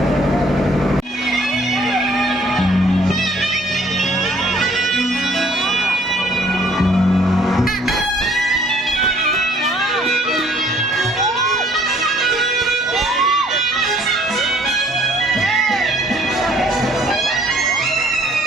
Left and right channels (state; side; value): normal; both; correlation 0.60